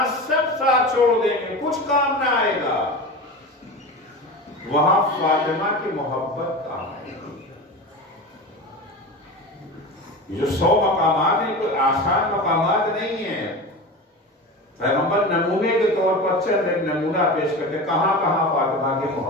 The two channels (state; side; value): normal; both; correlation 0.28